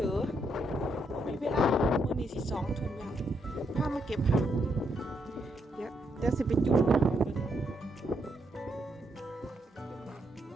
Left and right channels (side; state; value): both; normal; correlation 0.77